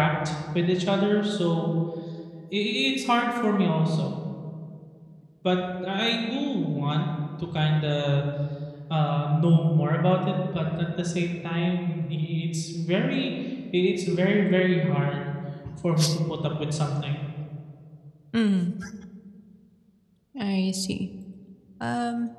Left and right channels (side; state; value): both; identical; correlation 1.00